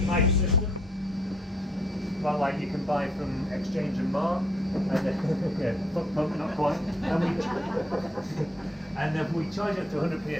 pipe system, well, like you can buy from Exchange and Mark, and yeah, pump, not quite. And then we charge it to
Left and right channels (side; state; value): both; normal; correlation 0.70